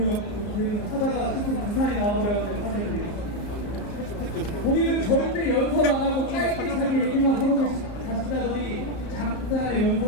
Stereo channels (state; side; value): late; right; 34 ms